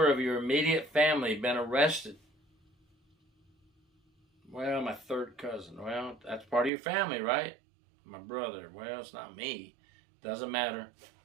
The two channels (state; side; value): drops out; left; at 6.7 s